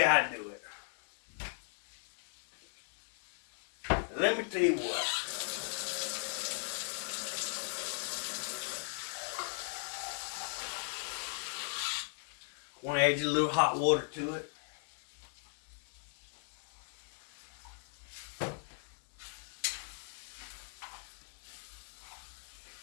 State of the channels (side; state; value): right; silent; 52 dB below the other